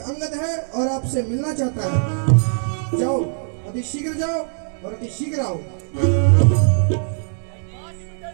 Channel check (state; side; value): silent; left; 65 dB below the other